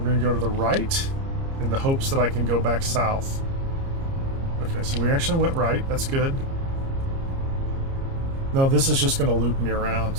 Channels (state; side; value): late; left; 30 ms